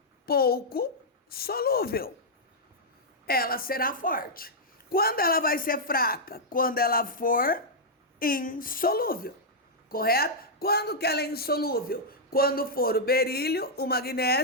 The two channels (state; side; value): normal; both; correlation -0.07